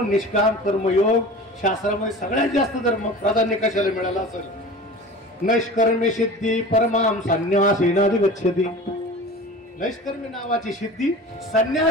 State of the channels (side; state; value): both; normal; correlation 0.37